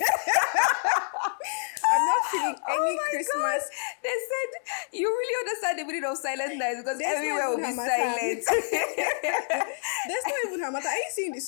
I'm not feeling any Christmas. God. They said you really understand the meaning of Silent Night because There's everywhere will be silent. There's not even Hamata. Are you seeing this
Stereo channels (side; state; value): right; silent; 60 dB below the other